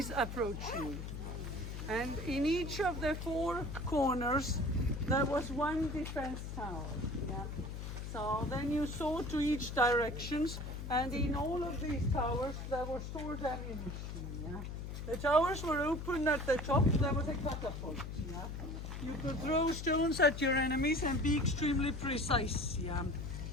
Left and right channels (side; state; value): left; noise; hum, 7 dB below the sound